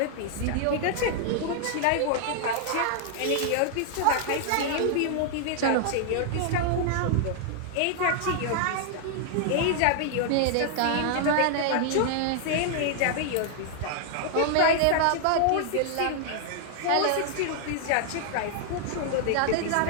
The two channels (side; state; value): both; different; correlation -0.01